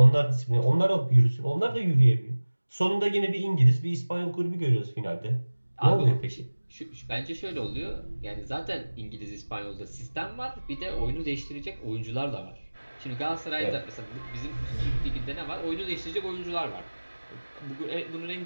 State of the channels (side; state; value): both; inverted; correlation -1.00